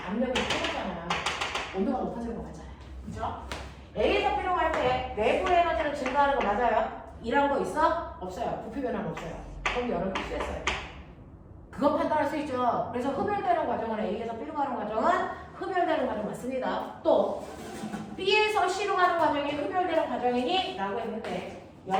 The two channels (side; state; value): both; identical; correlation 1.00